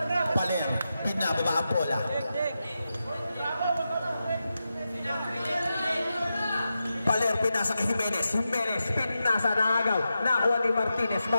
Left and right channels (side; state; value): both; inverted; correlation -0.90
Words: Paler. Binababa ang bola. Paler, pinasa kay Jimenez. Jimenez, pinasa na agaw. Nakuha ni Martinez.